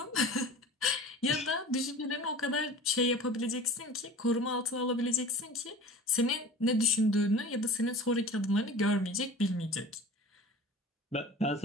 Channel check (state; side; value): normal; both; correlation 0.40